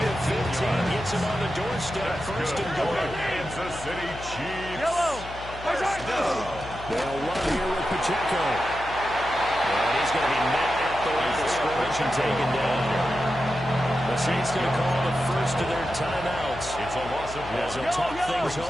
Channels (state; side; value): noise; left; hum, 13 dB below the sound